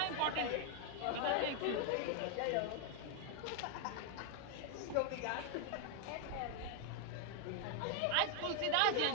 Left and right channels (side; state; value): both; different; correlation 0.00